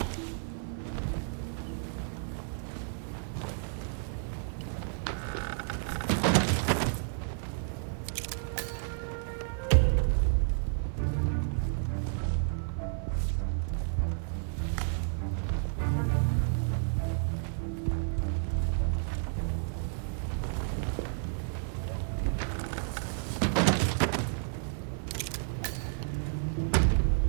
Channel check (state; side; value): silent; left; 57 dB below the other